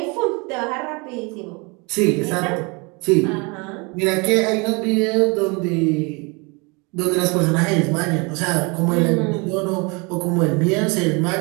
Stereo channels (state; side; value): quieter; left; 29.2 dB